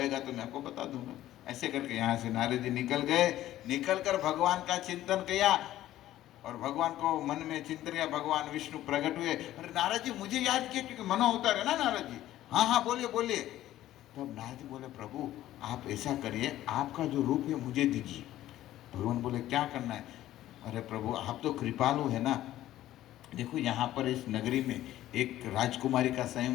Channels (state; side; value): quieter; right; 13.9 dB